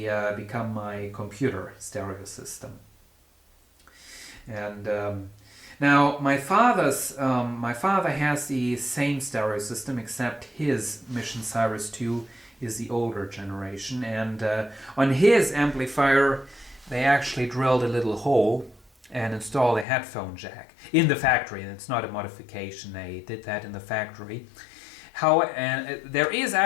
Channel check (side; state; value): right; drops out; at 19.9 s